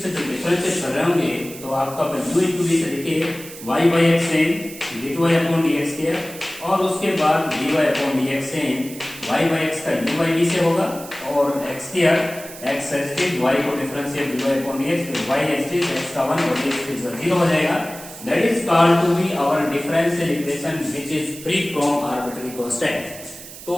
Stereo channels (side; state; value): right; noise; hiss, 15 dB below the sound